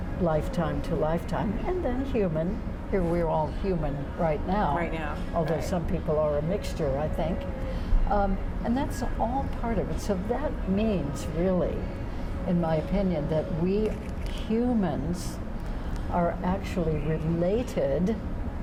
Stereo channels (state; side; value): identical; both; correlation 1.00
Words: lifetime to lifetime, and then human. Here we're all human right now. Although some people are a mixture, I think. And that's all part of it. So that means, really, in my opinion, that we humans are actually related